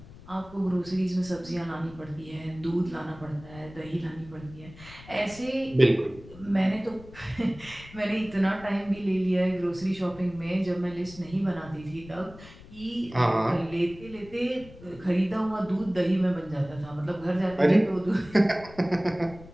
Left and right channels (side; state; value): left; noise; rumble, 19 dB below the sound